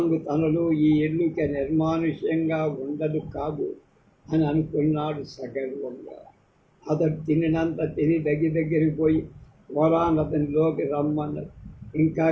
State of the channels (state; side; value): identical; both; correlation 1.00